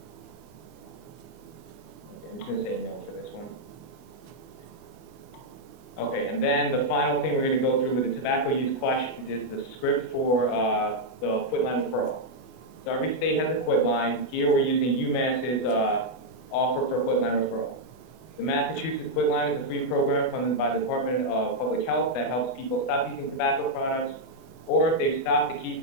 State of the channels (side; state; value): right; late; 24 ms